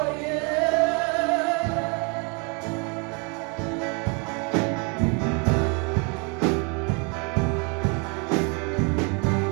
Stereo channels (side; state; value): left; quieter; 33.6 dB